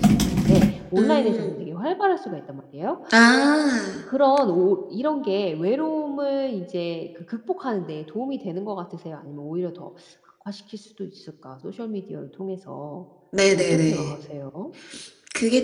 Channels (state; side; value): identical; both; correlation 1.00